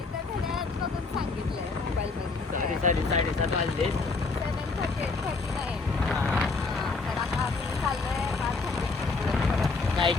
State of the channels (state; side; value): quieter; right; 4.0 dB